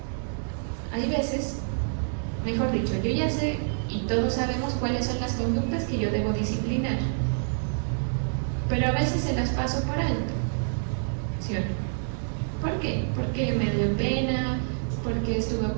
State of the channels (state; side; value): silent; left; digital silence